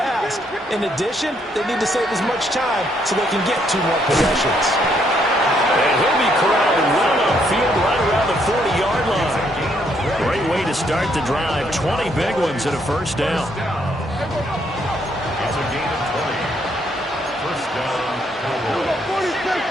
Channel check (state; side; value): normal; both; correlation 0.72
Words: In addition, they need to save as much time so they can get 2 more possessions. And he'll be corralled well upfield right around the 40-yard line. Great way to start the drive. 20 big ones and a first down. It's a gain of 20. First down, Cowboys. 46.